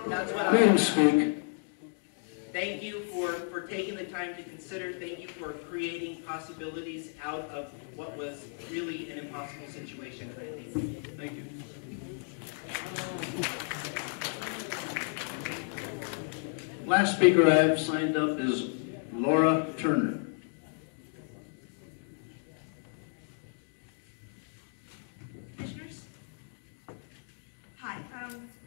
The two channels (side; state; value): right; silent; 56 dB below the other